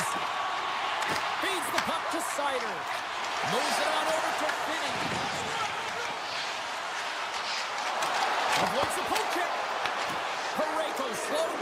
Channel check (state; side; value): identical; both; correlation 1.00